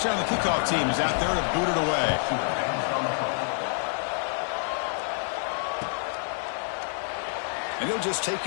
the kickoff team is out there to boot it away. And he'll just take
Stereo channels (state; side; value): silent; right; digital silence